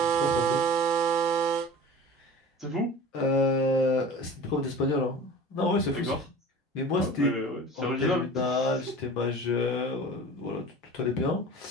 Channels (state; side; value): normal; both; correlation 0.39